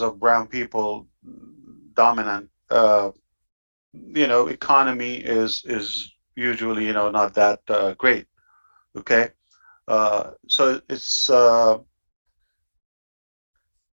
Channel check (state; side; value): inverted; both; correlation -1.00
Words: brown people dominant, you know, economy is usually, you know, not that great. Okay, so